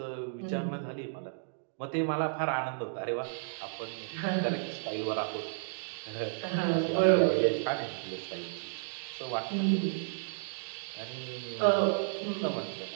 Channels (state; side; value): silent; left; digital silence